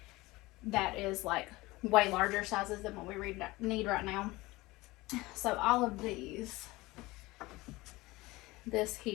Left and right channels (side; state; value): right; quieter; 20.7 dB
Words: That is like way larger sizes than what we need right now. So all of these, this